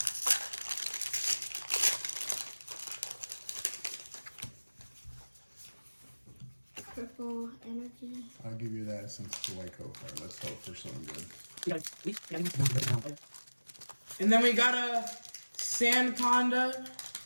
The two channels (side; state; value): both; inverted; correlation -1.00